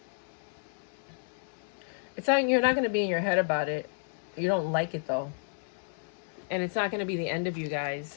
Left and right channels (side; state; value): right; silent; digital silence